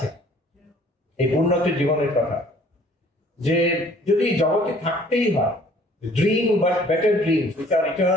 এই পূর্ণত্বের জীবনের কথা, যে যদি জগতে থাকতেই হয়, dream but better dreams which are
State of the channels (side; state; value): both; normal; correlation 0.56